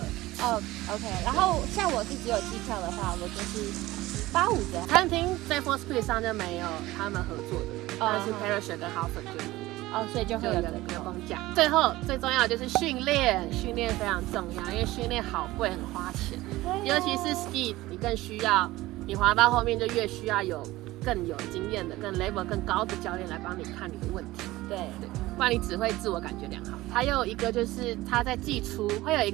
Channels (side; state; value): left; quieter; 18.0 dB